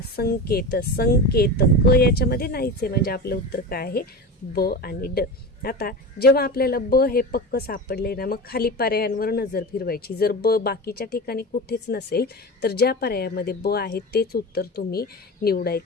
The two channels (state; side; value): normal; both; correlation 0.27